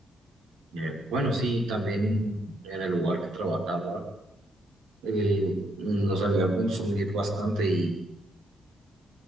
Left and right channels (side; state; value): both; normal; correlation 0.74